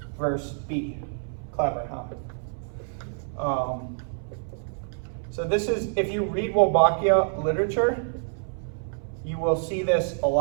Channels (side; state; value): left; silent; 60 dB below the other